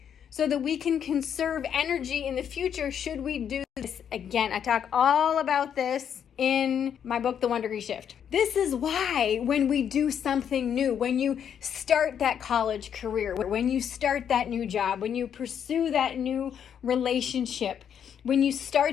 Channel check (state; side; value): quieter; right; 8.5 dB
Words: so that we can conserve energy in the future should we do this again. I talk all about this in my book, The 1-Degree Shift. This is why when we do something new, when you start that college career, when you start that new job, when you pursue that new relationship, when you